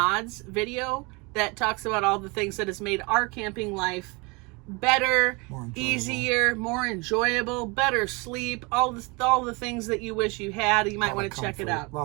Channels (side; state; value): left; quieter; 28.2 dB